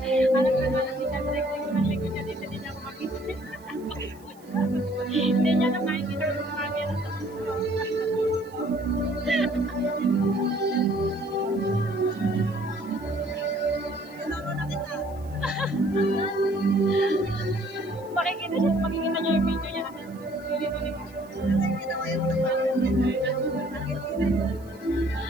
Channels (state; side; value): noise; right; hiss, 27 dB below the sound